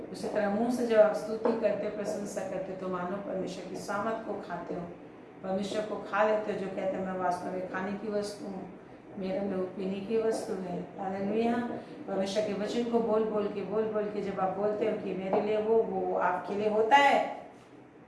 उसी तरह मुंह से जब आप स्तुति करते हो, प्रशंसा करते हो, तो मानो परमेश्वर की सामर्थ को खाते हो, परमेश्वर को खा लेते हो, जो कहते हैं मैं वास्तव में खाने की वस्तु हूँ, मेरे में पीने की वस्तु है। हालेलुया। परमेश्वर के वचन को बोल बोल के जब आप बोलते हो कि मेरे लिए वो आपके लिए होता है।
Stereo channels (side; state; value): both; identical; correlation 1.00